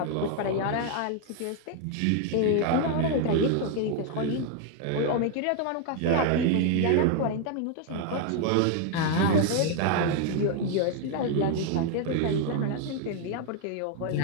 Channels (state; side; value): different; both; correlation 0.00